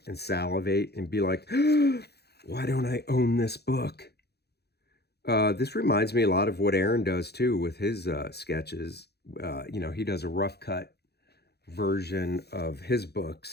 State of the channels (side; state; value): right; late; 0.48 ms